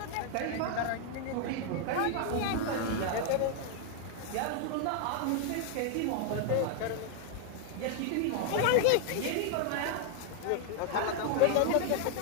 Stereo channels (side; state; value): both; different; correlation 0.00